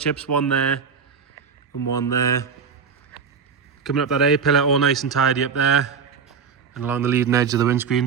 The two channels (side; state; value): left; quieter; 6.1 dB